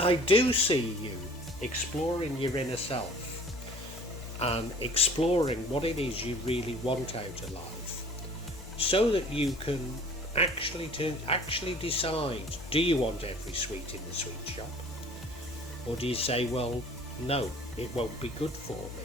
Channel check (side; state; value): both; normal; correlation 0.48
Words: do see you exploring your inner self and exploring what it is you really want out of life, so that you can actually decide, do you want every sweet in the sweet shop? Or do you say, well, no, it won't be good for